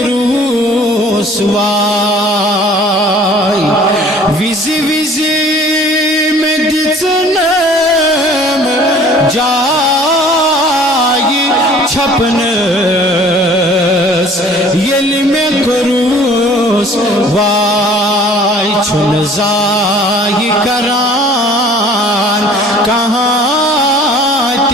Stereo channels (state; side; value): normal; both; correlation 0.51